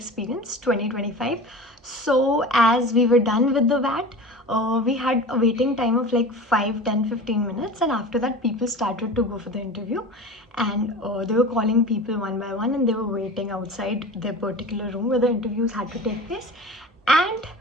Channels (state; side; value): normal; both; correlation 0.35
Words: 2025. So as we were done with the VAT, we had a waiting time of like 5, 10, 15 minutes, and after that people started to go for the interview, and they were calling people one by one and they were waiting outside their particular room where the interviews had to take place.